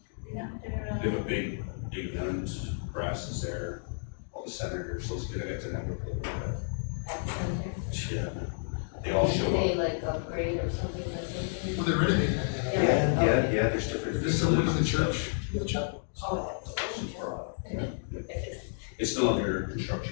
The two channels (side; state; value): right; silent; digital silence